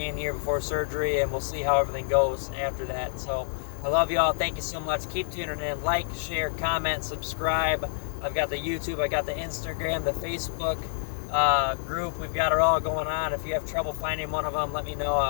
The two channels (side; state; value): right; silent; digital silence